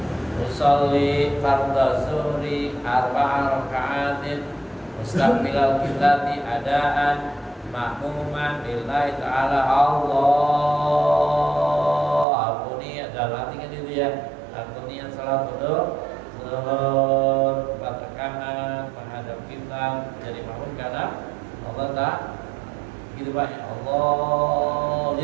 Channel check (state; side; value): drops out; left; at 12.2 s